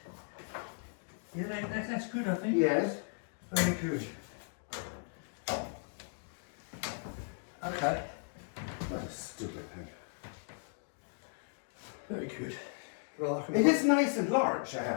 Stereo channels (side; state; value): right; silent; digital silence